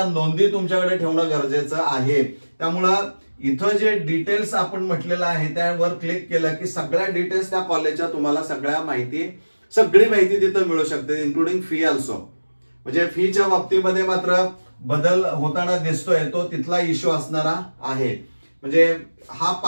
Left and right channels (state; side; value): inverted; both; correlation -1.00